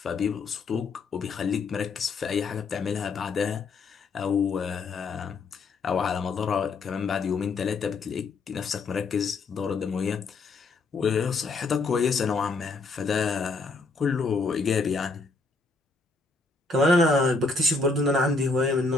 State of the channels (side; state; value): right; quieter; 3.8 dB